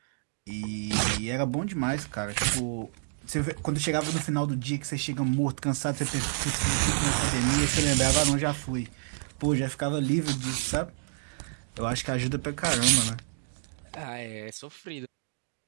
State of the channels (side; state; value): left; silent; digital silence